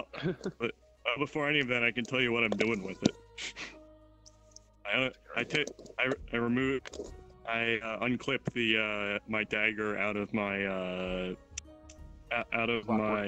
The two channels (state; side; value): identical; both; correlation 1.00